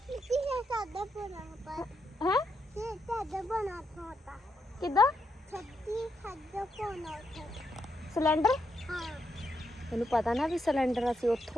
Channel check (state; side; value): normal; both; correlation 0.81